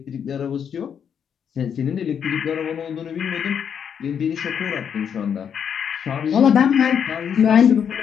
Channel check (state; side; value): quieter; right; 7.8 dB